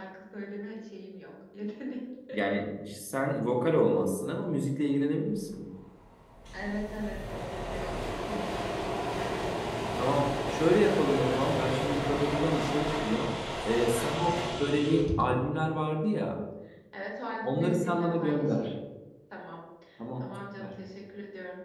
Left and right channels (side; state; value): both; identical; correlation 1.00